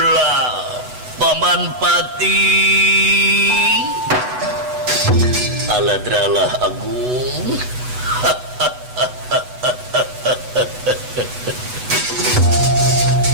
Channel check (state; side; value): late; left; 8.1 ms